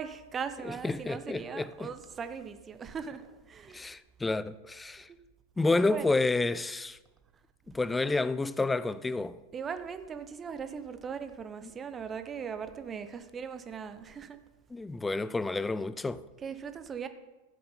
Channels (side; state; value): both; normal; correlation 0.89